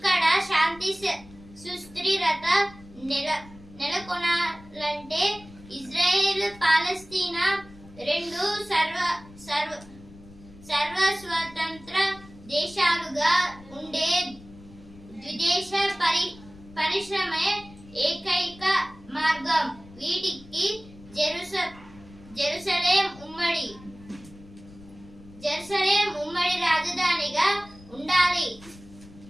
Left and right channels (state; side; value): noise; left; rumble, 21 dB below the sound